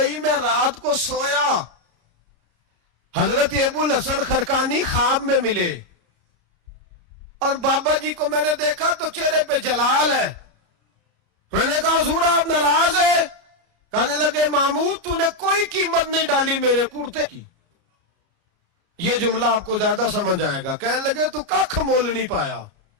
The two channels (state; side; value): late; left; 33 ms